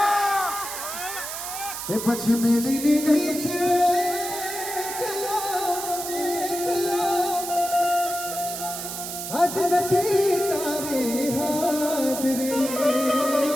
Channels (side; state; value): right; noise; hiss, 7 dB below the sound